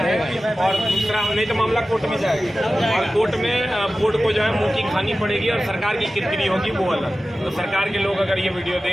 और दूसरा नहीं तो मामला कोर्ट में जाएगा और कोर्ट में बोर्ड को जो है मुंह की खानी पड़ेगी और सरकार की किरकिरी होगी वो अलग। तो सरकार के लोग अगर ये वीडियो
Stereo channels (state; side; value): normal; both; correlation 0.95